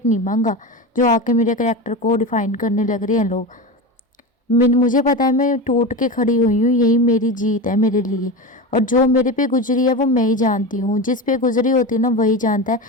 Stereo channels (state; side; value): normal; both; correlation 0.23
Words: नहीं मांगा जो आके मेरे करैक्टर को डिफाइन करने लग रहे हैं लोग। मुझे पता है मैं टूट के खड़ी हुई हूँ, यही मेरी जीत है मेरे लिए। और जो मेरे पे गुजरी है वो मैं ही जानती हूँ, जिस पे गुजरी होती है ना वही जानता है।